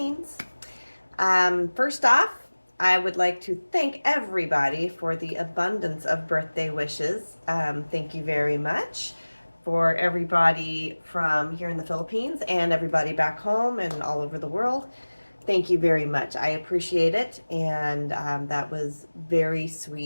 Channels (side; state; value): both; inverted; correlation -1.00